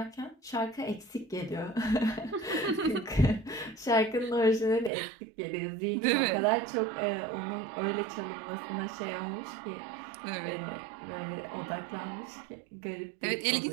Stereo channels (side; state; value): left; drops out; at 4.9 s